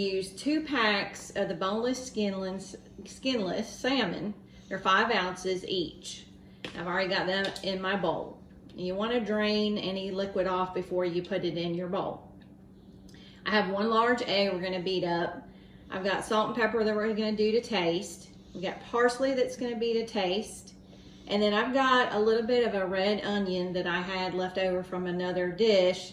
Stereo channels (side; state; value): both; identical; correlation 1.00